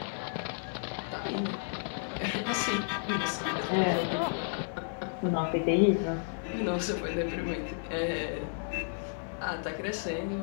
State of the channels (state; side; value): silent; right; 56 dB below the other